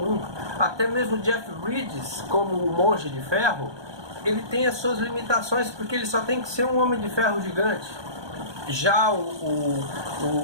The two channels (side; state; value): left; late; 1.2 ms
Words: Até mesmo Jeff Bridges como o Monge de Ferro, ele tem as suas limitações, porque ele só tem que ser um Homem de Ferro gigante. Já